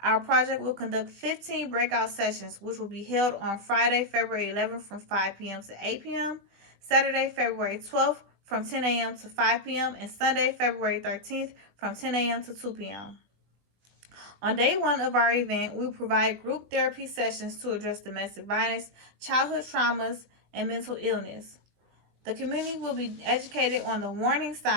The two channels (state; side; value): late; left; 20 ms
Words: project will conduct 15 breakout sessions, which will be held on Friday, February 11th from 5 p.m. to 8 p.m., Saturday, February 12th from 10 a.m. to 5 p.m., and Sunday, February 13th from 10 a.m. to 2 p.m. On day one of our event, we provide group therapy sessions to address domestic violence, childhood traumas, and mental illness. The community will be educated on the warning